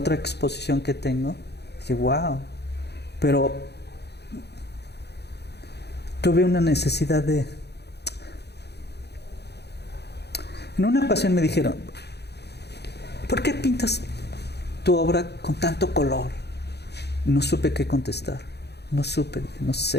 exposición que tengo, dije, wow, pero tuve una necesidad de... En una ocasión me dijeron, ¿por qué pintas tu obra con tanto color? No supe qué contestar. No supe, dije, no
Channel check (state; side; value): late; right; 0.48 ms